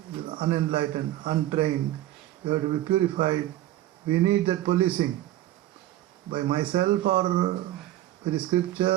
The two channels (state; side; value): quieter; left; 14.3 dB